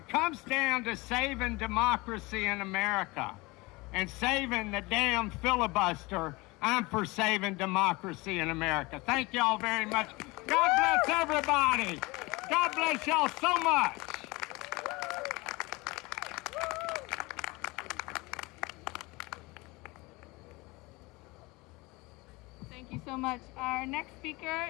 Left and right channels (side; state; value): right; quieter; 23.6 dB